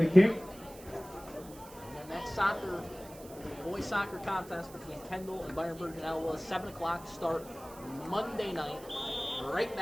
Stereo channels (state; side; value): noise; right; hiss, 19 dB below the sound